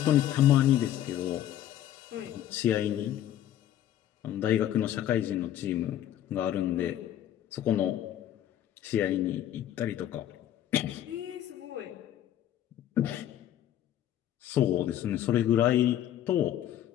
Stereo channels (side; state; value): right; quieter; 11.7 dB